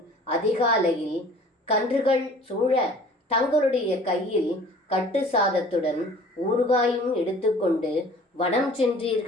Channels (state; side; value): normal; both; correlation 0.49